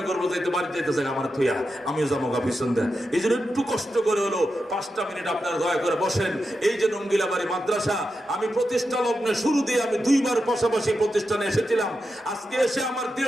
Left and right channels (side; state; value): both; normal; correlation 0.88